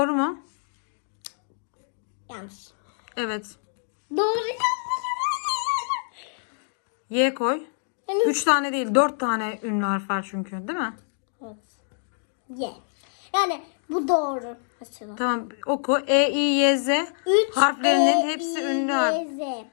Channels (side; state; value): right; silent; digital silence